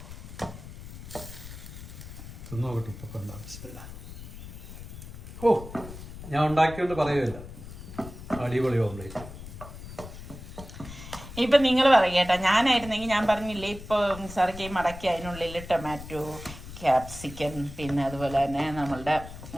തിന്നോക്കട്ടെ ഇപ്പൊ കൊണ്ടാ. ഓ ഞാൻ ഉണ്ടാക്കിയോണ്ട് പറയുമല്ല, അടിപൊളി ഓംലേറ്റ്. ഇപ്പൊ നിങ്ങൾ പറയട്ടാ, ഞാനായിരുന്നെങ്കിൽ ഞാൻ പറഞ്ഞില്ലേ ഇപ്പൊ നിസാറിക്ക് മടക്കി അതിനുള്ളിൽ ടൊമാറ്റോ, ക്യാപ്സിക്കൻ, പിന്നെ അതുപോലെ തന്നെ നമ്മളുടെ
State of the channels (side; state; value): left; noise; rumble, 13 dB below the sound